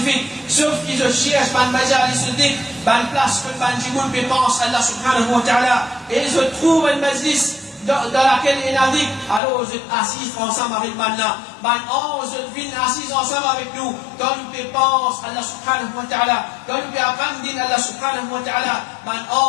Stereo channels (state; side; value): drops out; right; at 9.4 s